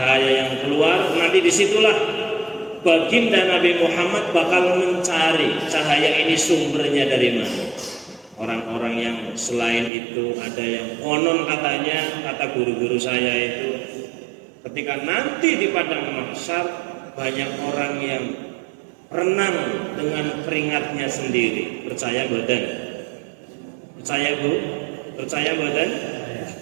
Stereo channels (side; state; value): left; drops out; at 9.9 s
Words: yang keluar, nanti disitulah baginda Nabi Muhammad bakal mencari cahaya ini sumbernya dari mana. Orang-orang yang selain itu ada yang konon katanya, kata guru-guru saya itu, ketika nanti di padang mahsyar banyak orang yang renang dengan keringatnya sendiri. Percaya badan? Percaya Bu? Percaya badan?